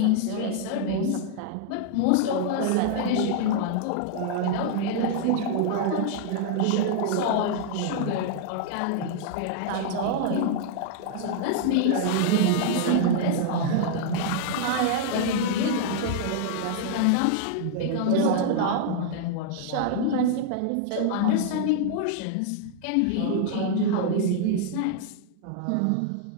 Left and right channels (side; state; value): both; different; correlation -0.01